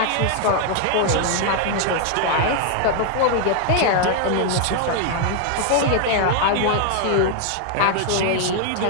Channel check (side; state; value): both; different; correlation 0.00